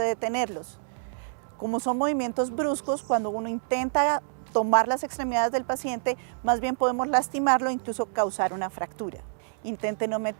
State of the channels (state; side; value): silent; left; digital silence